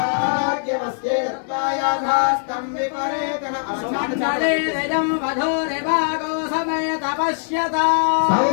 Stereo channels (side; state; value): right; silent; 65 dB below the other